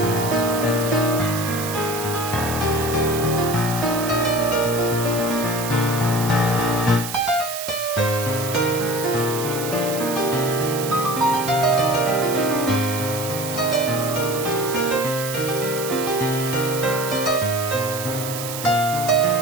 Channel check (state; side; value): noise; right; hiss, 7 dB below the sound